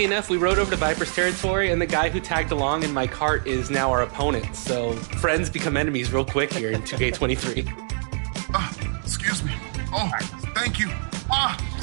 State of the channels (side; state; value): left; silent; digital silence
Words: enough, we rode over to Viper's territory, and the guy who tagged along in my cart is now our opponent. So friends become enemies real quick here in 2K23. Excuse me. Oh, thank you.